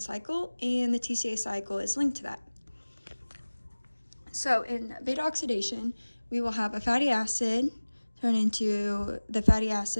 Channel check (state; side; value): inverted; both; correlation -1.00